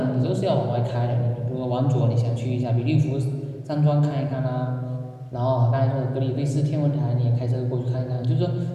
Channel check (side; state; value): both; identical; correlation 1.00